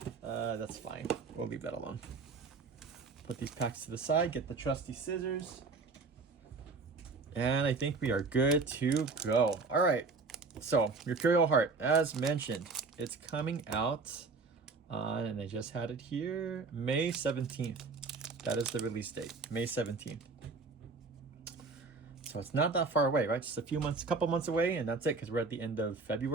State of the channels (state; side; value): quieter; left; 4.1 dB